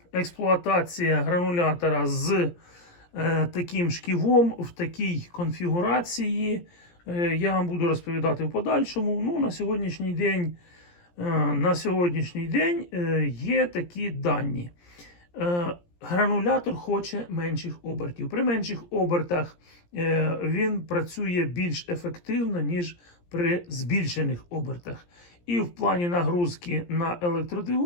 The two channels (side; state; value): right; late; 17 ms